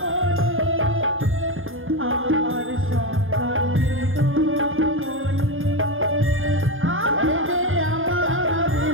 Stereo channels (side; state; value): left; late; 0.59 ms